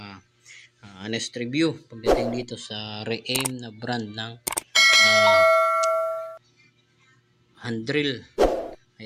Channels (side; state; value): both; identical; correlation 1.00